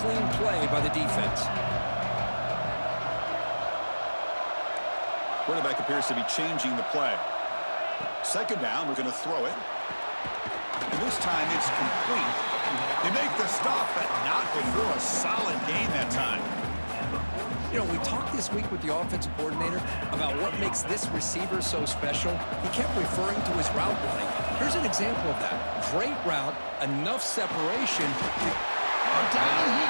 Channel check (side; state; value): both; inverted; correlation -1.00